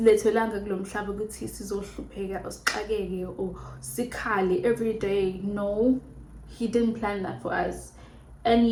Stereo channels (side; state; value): both; identical; correlation 1.00